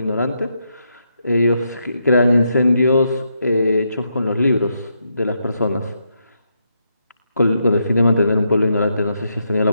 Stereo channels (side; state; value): both; inverted; correlation -0.81